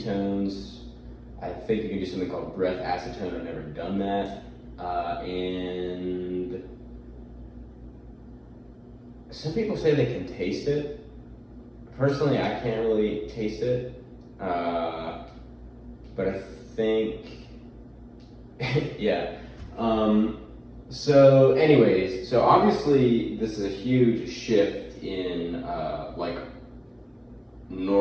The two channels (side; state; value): both; identical; correlation 1.00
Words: I think you can do something called breath acetone. I've never done that. And some people say they can taste it. Personally, I can't really taste it. But I think, yeah. So anyways, so obviously this is a huge shift in